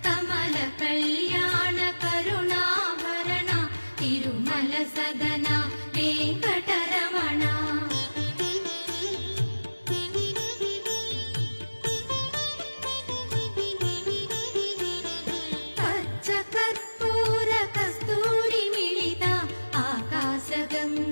కమల కళ్యాణ కరుణాభరణ తిరుమల సదన వెంకటరమణ పచ్చ కర్పూర కస్తూరి మిళిత ఆకాశ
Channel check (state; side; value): inverted; both; correlation -1.00